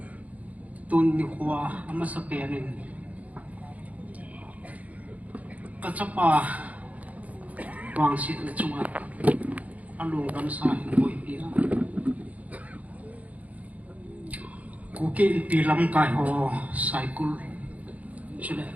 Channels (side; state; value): left; late; 0.072 ms